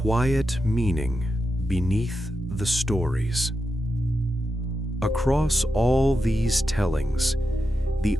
meaning beneath the stories. Across all these tellings, the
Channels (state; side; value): normal; both; correlation 0.88